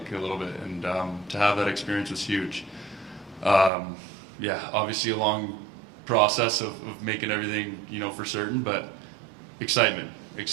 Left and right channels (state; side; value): drops out; left; at 3.7 s